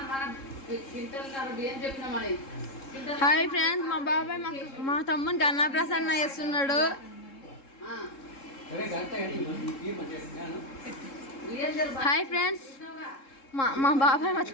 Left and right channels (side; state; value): right; late; 3.7 ms